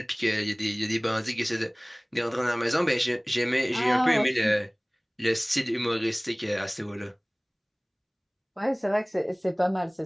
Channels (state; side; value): identical; both; correlation 1.00